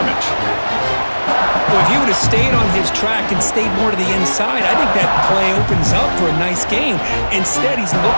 Well, if he would have stayed on his track and stayed more to the inside, I think that play opens up for a nice gain. Instead, he's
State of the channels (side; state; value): both; inverted; correlation -1.00